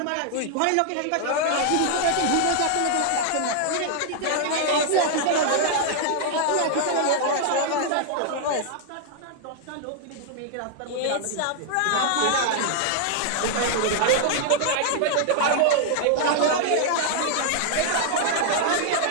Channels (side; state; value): both; different; correlation 0.00